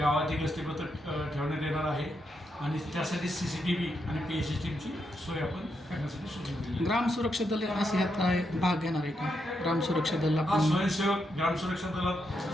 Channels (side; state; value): both; normal; correlation 0.82